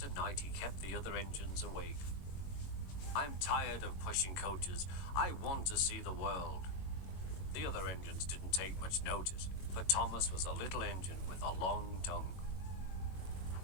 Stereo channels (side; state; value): right; late; 21 ms